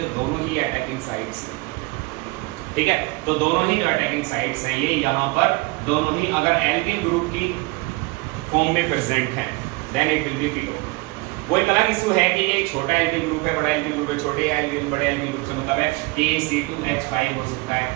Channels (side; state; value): left; quieter; 25.1 dB